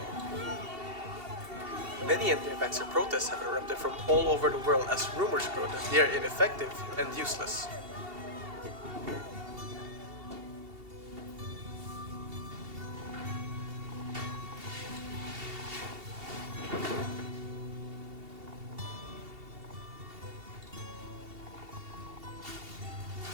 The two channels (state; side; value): late; left; 2.7 ms